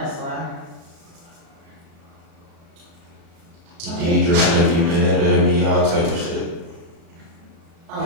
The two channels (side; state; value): left; late; 37 ms